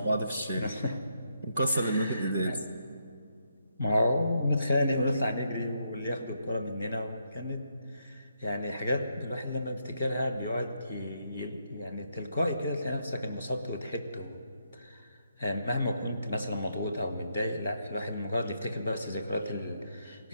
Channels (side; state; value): both; inverted; correlation -0.78